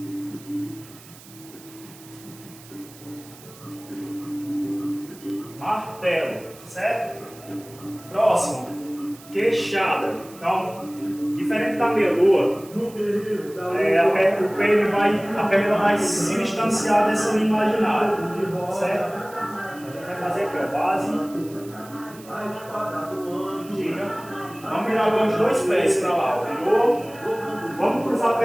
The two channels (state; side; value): noise; right; hiss, 21 dB below the sound